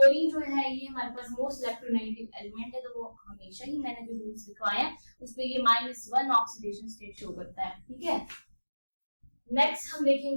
जो है ये हमारे पास मोस्ट इलेक्ट्रोनेगेटिव एलिमेंट है, तो वो हमेशा ही मैंने जो रूल्स लिखवाए हैं उस पे ये -1 ऑक्सीडेशन स्टेट शो करता है। ठीक है, नेक्स्ट हम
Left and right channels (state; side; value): inverted; both; correlation -1.00